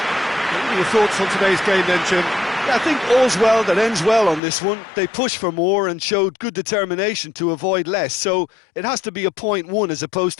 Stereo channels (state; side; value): drops out; right; at 4.4 s